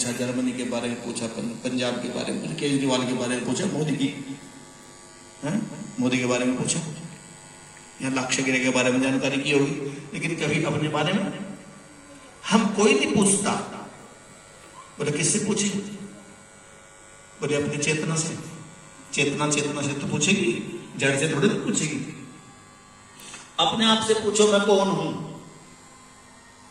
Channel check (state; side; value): identical; both; correlation 1.00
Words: जर्मनी के बारे में पूछा, पंजाब के बारे में पूछा, केजरीवाल के बारे में पूछा, मोदी के बारे में पूछा, या लाक्षागिरी के बारे में जानकारी की होगी, लेकिन कभी अपने बारे में हम कोई नहीं पूछता। बोले किससे पूछे, बोले अपनी चेतना से। चेतना से तो पूछेगी, जड़ से थोड़ी तो पूछेगी। अपने आप से पूछो मैं कौन हूं,